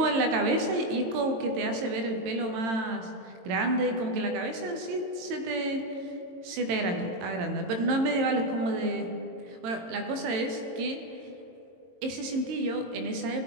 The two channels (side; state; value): left; late; 22 ms